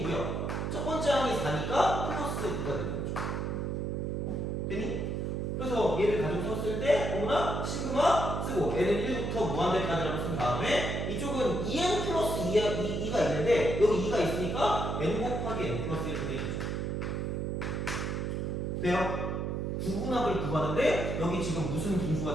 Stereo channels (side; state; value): right; noise; hum, 1 dB below the sound